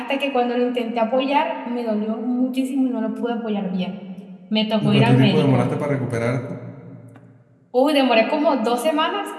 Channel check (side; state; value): both; identical; correlation 1.00